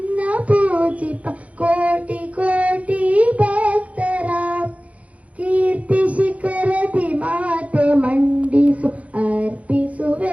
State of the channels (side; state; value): left; late; 0.066 ms